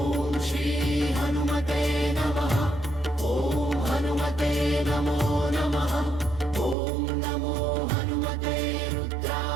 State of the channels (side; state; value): left; drops out; at 6.8 s